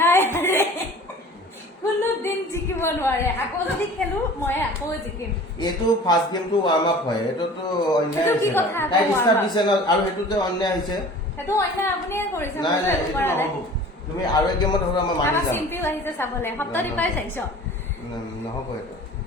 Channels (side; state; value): both; normal; correlation 0.43